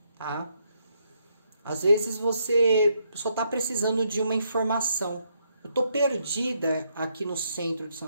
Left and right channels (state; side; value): inverted; both; correlation -0.76